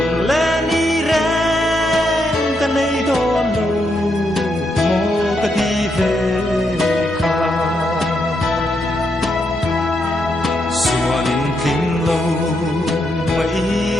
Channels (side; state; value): both; normal; correlation 0.80